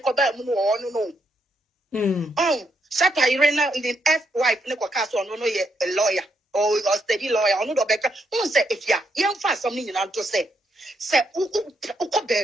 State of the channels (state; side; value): normal; both; correlation 0.77